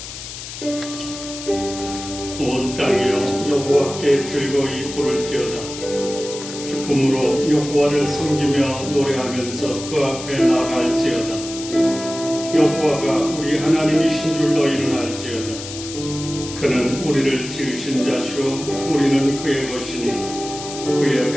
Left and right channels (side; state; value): left; noise; hiss, 10 dB below the sound